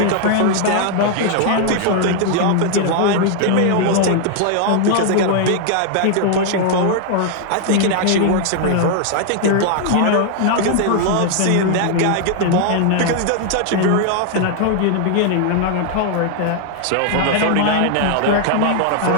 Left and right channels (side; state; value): both; different; correlation 0.00